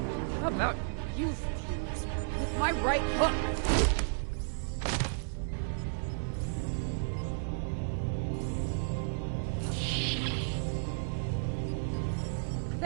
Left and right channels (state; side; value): silent; left; digital silence